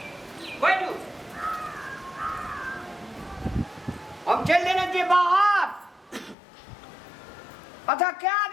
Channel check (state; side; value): drops out; right; at 6.4 s